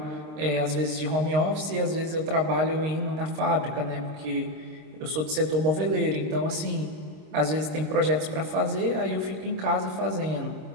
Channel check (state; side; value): late; left; 26 ms